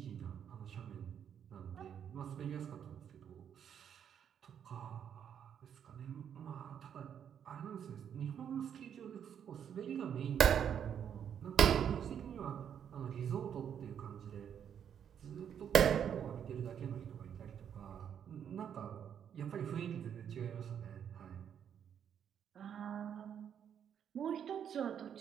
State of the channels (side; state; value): left; quieter; 8.6 dB